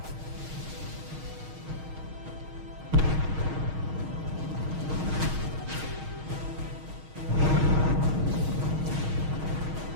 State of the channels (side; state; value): left; late; 6.4 ms